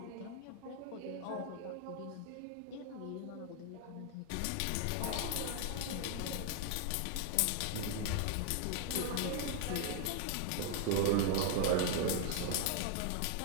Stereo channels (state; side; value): different; both; correlation 0.00